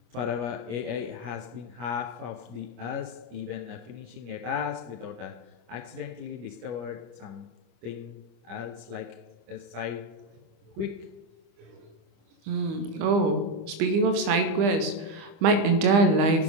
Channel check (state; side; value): late; left; 25 ms